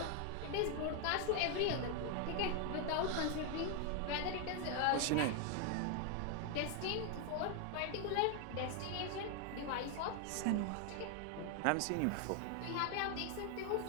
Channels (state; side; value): different; both; correlation 0.01